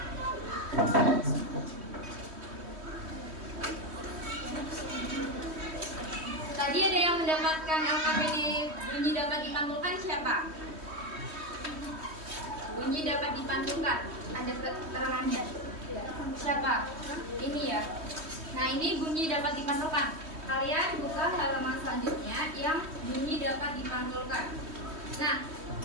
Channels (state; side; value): late; left; 3.2 ms